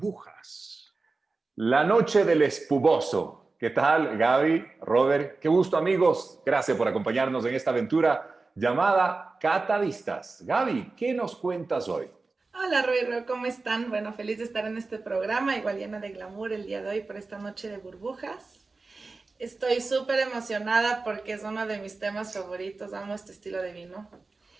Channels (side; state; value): left; quieter; 3.8 dB